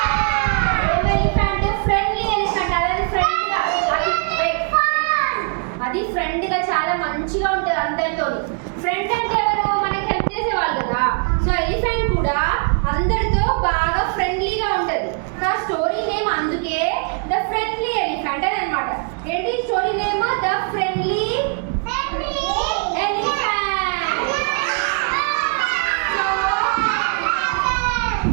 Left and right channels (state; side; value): quieter; left; 39.6 dB